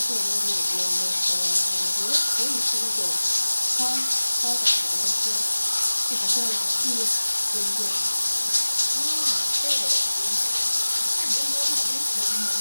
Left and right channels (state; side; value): inverted; both; correlation -1.00